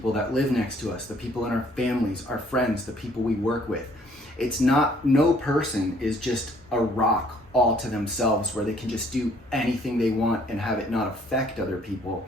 that live next to us, the people in our families, our friends, the people we work with. It's not, no person is just a rock all to themselves where they can just do anything they want and have it not affect other people.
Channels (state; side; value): normal; both; correlation 0.61